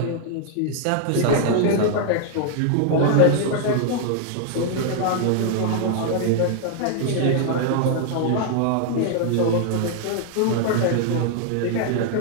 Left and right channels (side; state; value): both; different; correlation 0.00